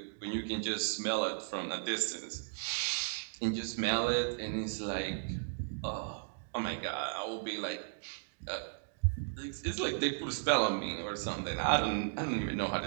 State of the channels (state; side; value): silent; left; digital silence